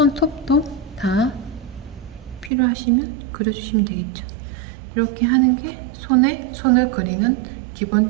다 필요하시면 그려주시면 되겠죠. 이렇게 하는 게 손을 그리는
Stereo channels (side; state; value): left; drops out; at 2.5 s